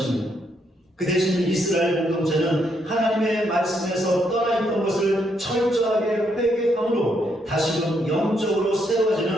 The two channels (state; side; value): normal; both; correlation 0.76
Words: 그 대신 이스라엘 공동체는 하나님의 말씀에서 떠나있던 것을 철저하게 회개함으로 다시금 영적으로